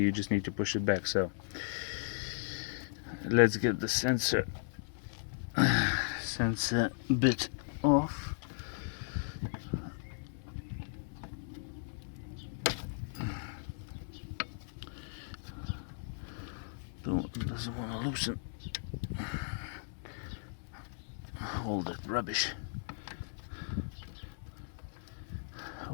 just need to push it back. So let's get the sensor bit off. Doesn't want to loosen all that rubbish.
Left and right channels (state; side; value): silent; right; digital silence